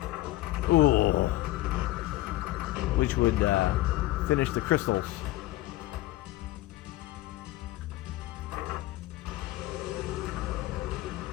Ooh. Which would finish the crystals.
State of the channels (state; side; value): quieter; right; 16.8 dB